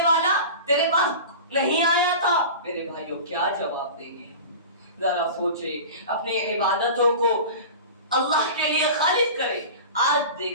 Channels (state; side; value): inverted; both; correlation -0.34